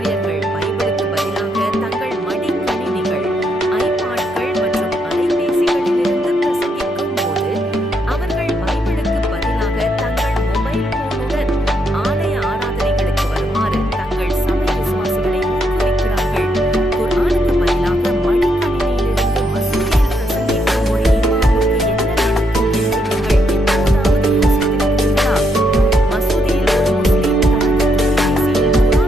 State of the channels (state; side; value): normal; both; correlation 0.77